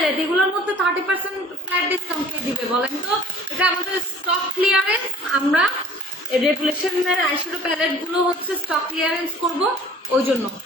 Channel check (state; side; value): normal; both; correlation 0.50